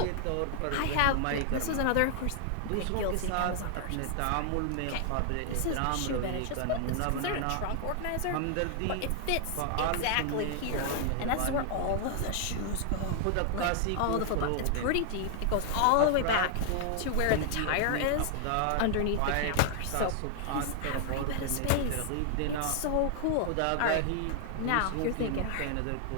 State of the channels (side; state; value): both; different; correlation 0.00